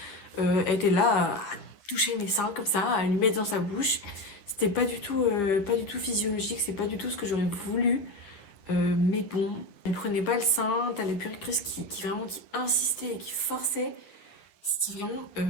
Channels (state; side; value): late; right; 9.7 ms